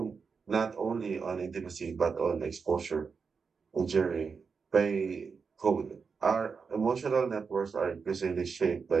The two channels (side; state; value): left; quieter; 5.4 dB